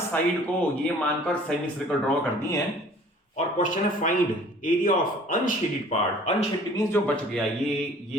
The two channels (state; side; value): normal; both; correlation 0.51